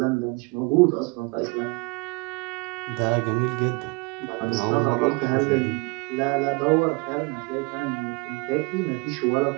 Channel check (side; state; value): left; quieter; 28.8 dB